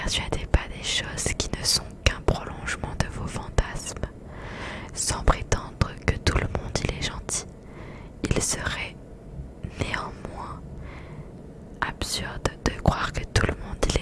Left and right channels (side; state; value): both; identical; correlation 1.00